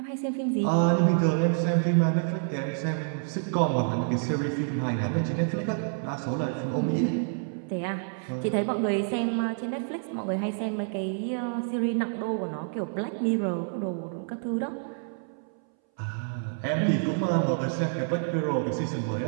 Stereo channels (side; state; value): left; silent; 59 dB below the other